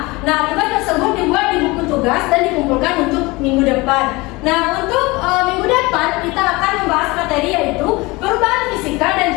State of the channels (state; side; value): quieter; right; 23.2 dB